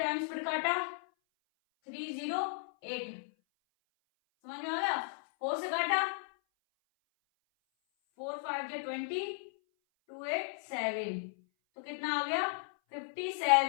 फिर काटा 308, समझ में आ गया। 4 से काटा 4 5 जो 20, 2 8 7, तो कितना आ गया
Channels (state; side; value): silent; right; 54 dB below the other